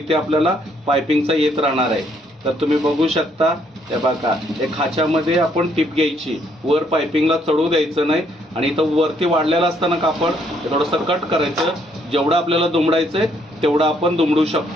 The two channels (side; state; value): both; normal; correlation 0.69